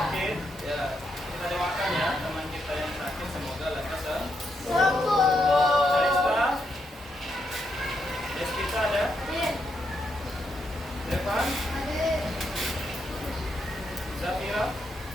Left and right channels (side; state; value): both; normal; correlation 0.80